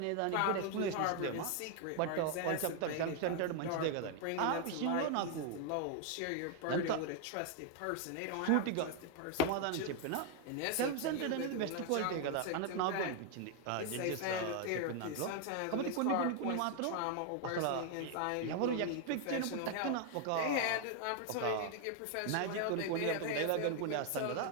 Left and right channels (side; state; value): both; different; correlation 0.00